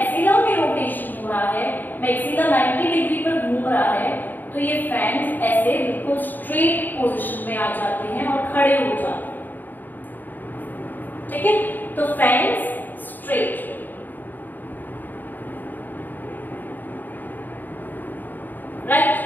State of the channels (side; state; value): right; late; 0.089 ms